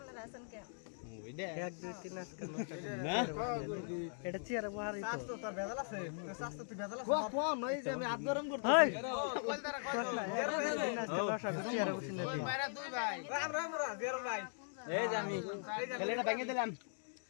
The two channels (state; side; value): silent; right; digital silence